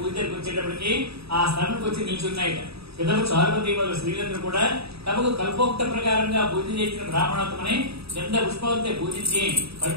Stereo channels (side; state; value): left; late; 0.77 ms